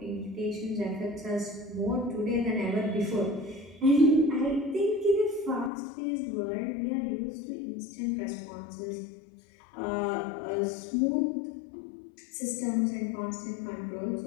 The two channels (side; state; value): right; drops out; at 5.7 s